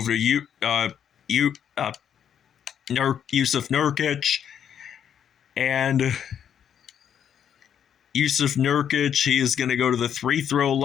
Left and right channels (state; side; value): quieter; right; 8.8 dB